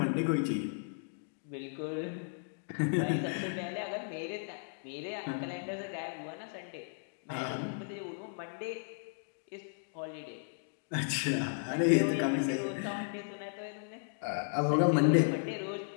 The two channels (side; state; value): right; silent; digital silence